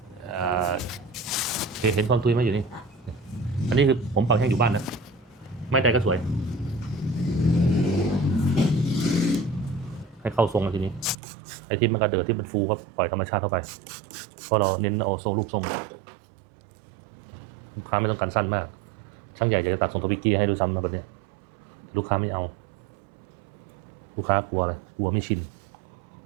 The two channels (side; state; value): left; drops out; at 11.2 s